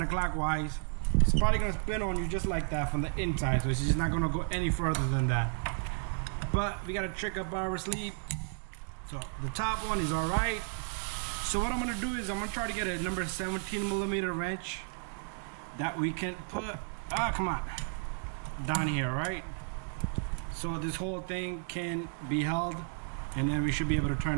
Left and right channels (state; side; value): silent; left; 56 dB below the other